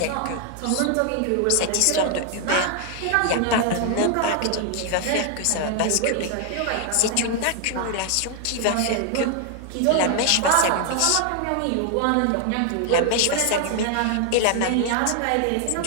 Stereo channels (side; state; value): both; different; correlation 0.00